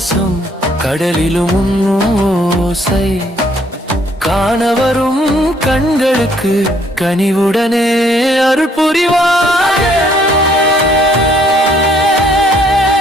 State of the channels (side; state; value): both; normal; correlation 0.65